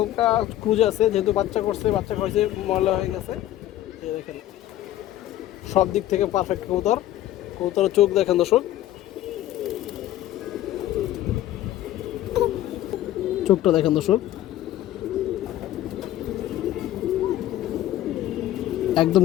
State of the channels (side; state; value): right; quieter; 13.6 dB